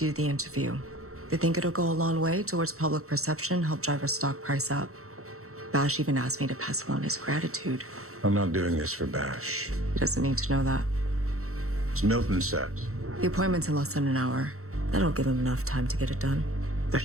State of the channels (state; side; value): late; left; 0.64 ms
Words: the interview. They think it'll go a long way towards public perception, help drive our stock price up. Bash even asked me to pass along his gratitude. I'm not doing this for Bash. He doesn't need to know that. As Milton said. The appointment's in less than an hour. That'll give him enough time to get it done. That